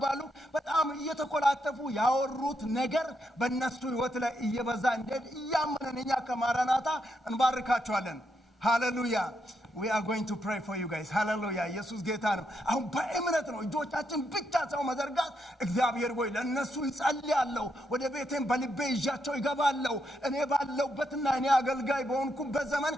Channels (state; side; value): normal; both; correlation 0.80